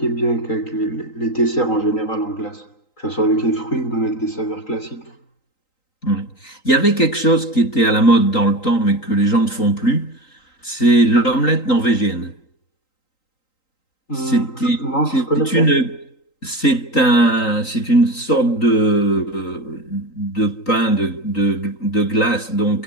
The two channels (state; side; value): late; right; 3.9 ms